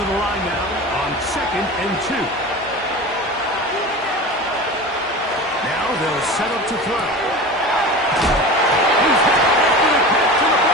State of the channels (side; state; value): both; normal; correlation 0.32